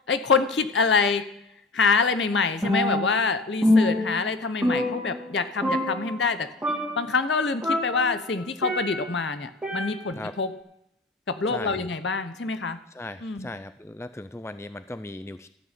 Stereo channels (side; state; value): right; quieter; 3.3 dB